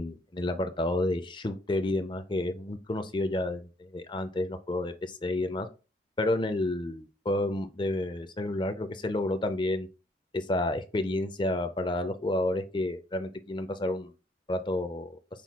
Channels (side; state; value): both; normal; correlation 0.66